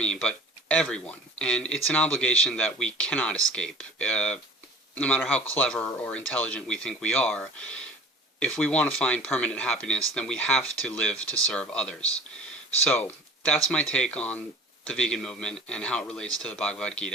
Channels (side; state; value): both; normal; correlation 0.42